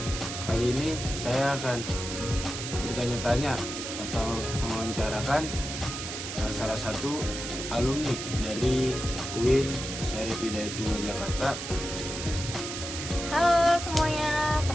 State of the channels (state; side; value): noise; right; hiss, 6 dB below the sound